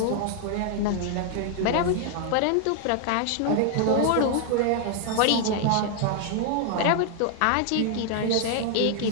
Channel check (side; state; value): both; different; correlation 0.00